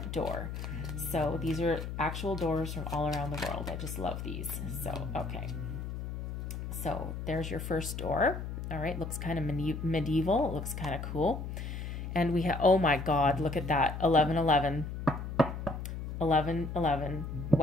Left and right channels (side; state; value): left; noise; hum, 6 dB below the sound